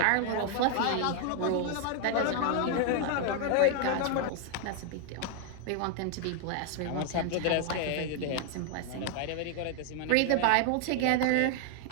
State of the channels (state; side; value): different; both; correlation 0.00